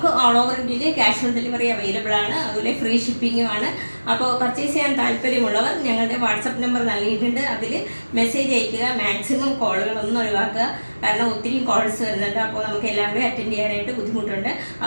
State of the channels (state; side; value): inverted; both; correlation -1.00